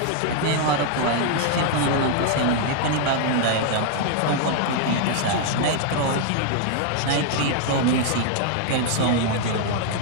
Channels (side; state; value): both; different; correlation 0.00